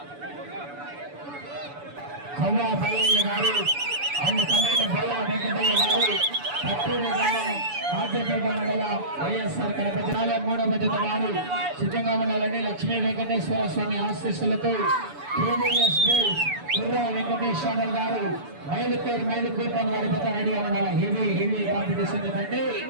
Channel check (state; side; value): late; left; 7.0 ms